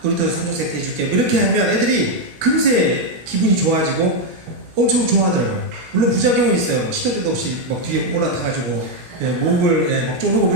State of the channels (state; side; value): late; left; 17 ms